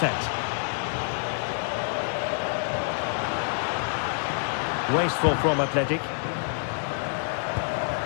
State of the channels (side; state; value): right; silent; digital silence